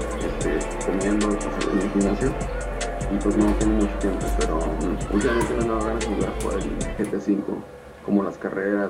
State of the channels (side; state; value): both; identical; correlation 1.00